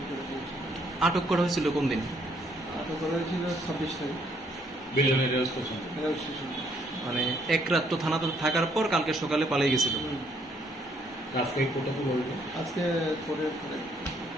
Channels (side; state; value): both; normal; correlation 0.68